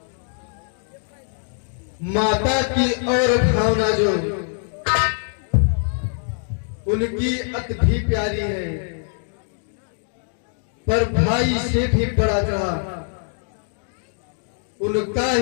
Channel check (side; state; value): right; silent; digital silence